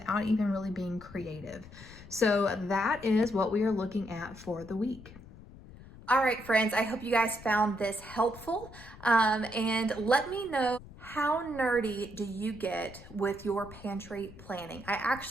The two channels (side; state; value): left; noise; rumble, 18 dB below the sound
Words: even really being creative. So that is what we are looking at for the week. All right, friends, I hope you guys found this helpful. And let me know, how nerdy do you get with your pantry planning? I